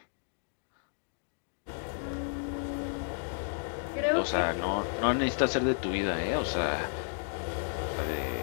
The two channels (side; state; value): right; silent; digital silence